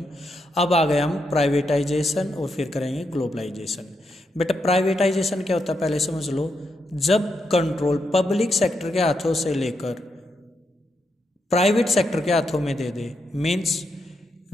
अब आ गए हम प्राइवेटाइजेशन और फिर करेंगे ग्लोबलाइजेशन। बेटा प्राइवेटाइजेशन क्या होता है पहले समझ लो। जब कंट्रोल पब्लिक सेक्टर के हाथों से लेकर प्राइवेट सेक्टर के हाथों में दे दे, मीन्स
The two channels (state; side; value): normal; both; correlation 0.82